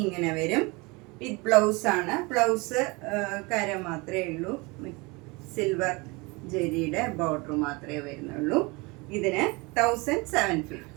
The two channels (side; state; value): left; quieter; 26.1 dB